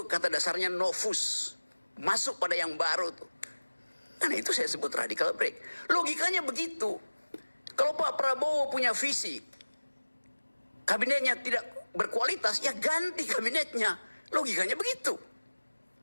kata dasarnya novus. Masuk pada yang baru tuh. Karena itu saya sebut radical break. Logikanya begitu. Kalau Pak Prabowo punya visi, kabinetnya tidak berkualitas, ya ganti kabinetnya. Logikanya begitu.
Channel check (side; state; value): both; inverted; correlation -1.00